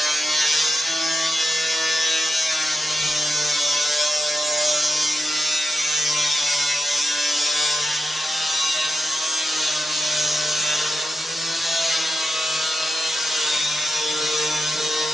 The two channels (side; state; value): both; normal; correlation 0.86